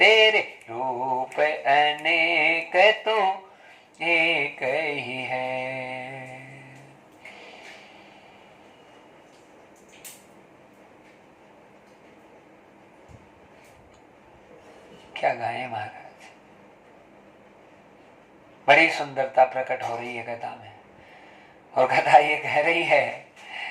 रूप अनेक तू एक ही है। क्या गाए महाराज, बड़ी सुंदरता प्रकट हो रही है कथा में। और कथा ये कह रही है,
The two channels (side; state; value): both; identical; correlation 1.00